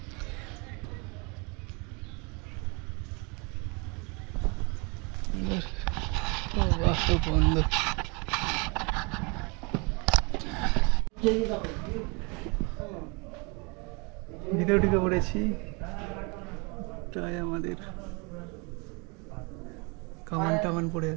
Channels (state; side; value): quieter; left; 31.0 dB